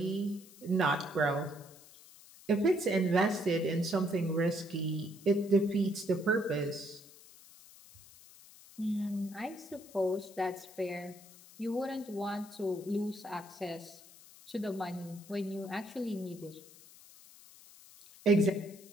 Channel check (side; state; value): left; noise; hiss, 21 dB below the sound